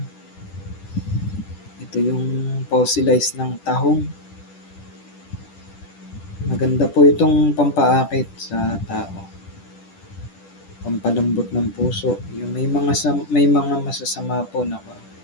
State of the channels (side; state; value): right; late; 10 ms